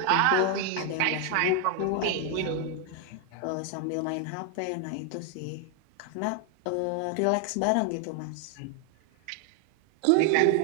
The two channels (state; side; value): different; both; correlation 0.00